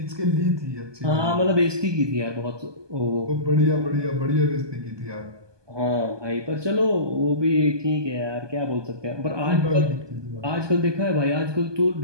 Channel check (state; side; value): late; left; 1.2 ms